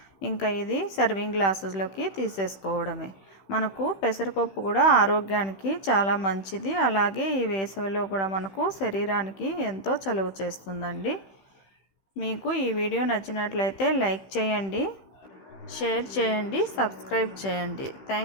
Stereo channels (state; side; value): late; right; 16 ms